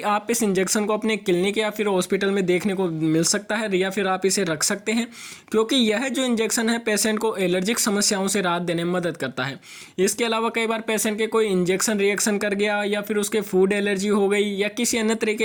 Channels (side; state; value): both; identical; correlation 1.00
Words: आप इस इंजेक्शन को अपने क्लिनिक या फिर हॉस्पिटल में देखने को मिल सकता है, या फिर आप इसे रख सकते हैं, क्योंकि यह जो इंजेक्शन है पेशेंट को एलर्जिक समस्याओं से राहत देने में मदद करता है। इसके अलावा कई बार पेशेंट के कोई इंजेक्शन रिएक्शन कर गया या फिर उसके फूड एलर्जी हो गई या किसी अन्य